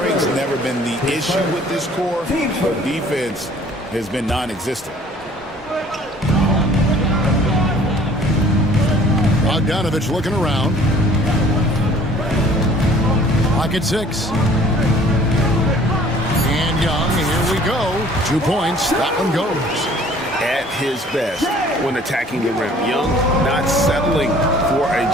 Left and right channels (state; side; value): normal; both; correlation 0.53